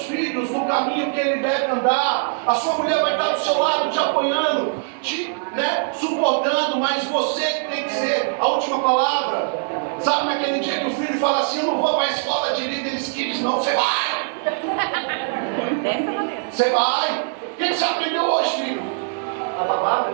filhos no caminho que ele deve andar. A sua mulher vai estar do seu lado te apoiando, te suportando, mas você que tem que ser a última palavra. Sabe naquele dia que o filho fala assim, eu não vou para a escola de líderes kids, não, você vai! Dessa maneira. Você vai! O que você aprendeu hoje, filho? A babá,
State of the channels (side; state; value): left; silent; 63 dB below the other